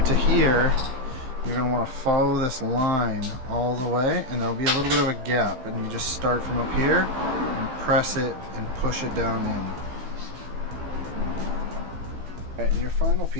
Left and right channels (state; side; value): late; left; 15 ms